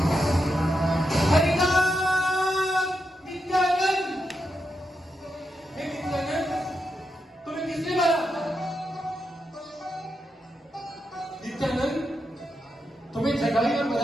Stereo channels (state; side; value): normal; both; correlation 0.85